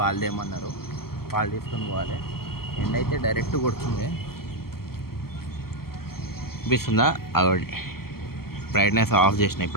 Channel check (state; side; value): late; right; 0.94 ms